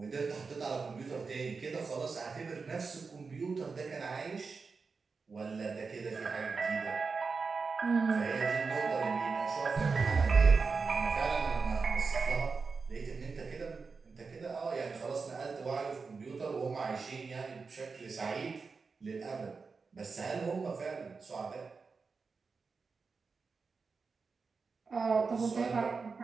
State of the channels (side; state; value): left; quieter; 4.7 dB